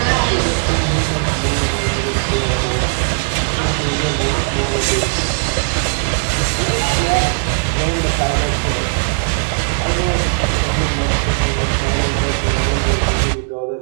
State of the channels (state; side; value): silent; left; digital silence